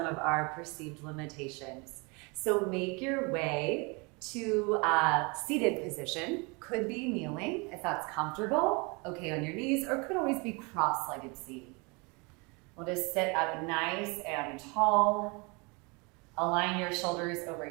of our perceived limitations. So make your way to a seated position. Could be kneeling if that's comfortable, okay on your knees, or could always be cross-legged seated. We'll just sit up nice and tall. Align your shoulders over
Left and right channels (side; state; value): left; quieter; 29.4 dB